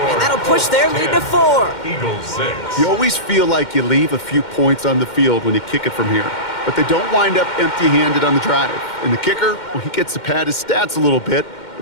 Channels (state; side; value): late; right; 2.1 ms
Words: And that'll push their lead to 4. Eagles 6. You always feel like you leave a few points on the field when you kick it from here. But they don't wind up empty-handed on the drive. And the kicker, well, he gets to pad his stats a little bit